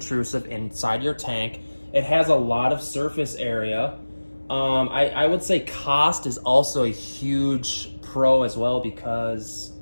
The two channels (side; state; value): both; inverted; correlation -1.00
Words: inside your tank. It has a lot of surface area. I would say cost is also a huge pro as well, because